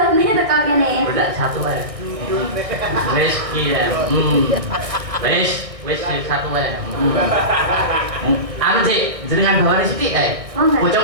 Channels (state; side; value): late; left; 1.6 ms